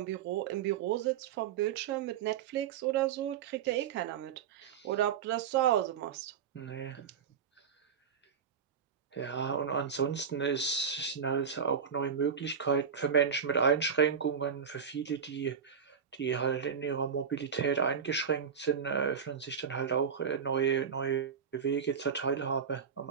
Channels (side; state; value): left; quieter; 7.1 dB